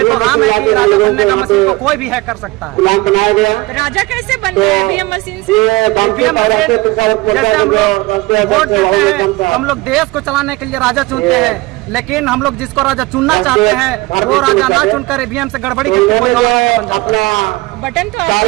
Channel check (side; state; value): left; quieter; 21.9 dB